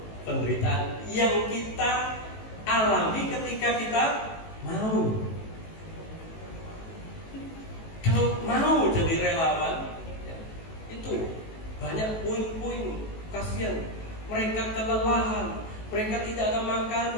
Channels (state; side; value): late; right; 18 ms